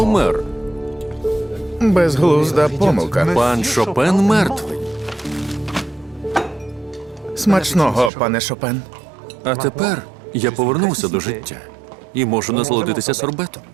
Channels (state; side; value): drops out; left; at 8.1 s